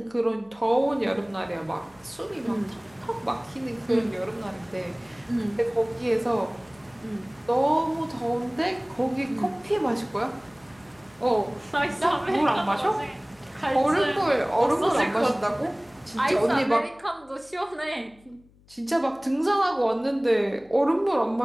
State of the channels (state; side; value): noise; left; hum, 29 dB below the sound